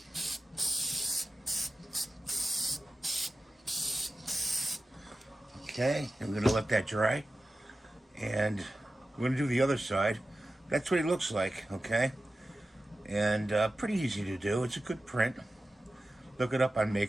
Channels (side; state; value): both; normal; correlation 0.94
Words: Okay, and we're gonna let that dry. And we're gonna do the other side. That's what he looks like, okay? And pretty easy to do. It's a good print. Look it up on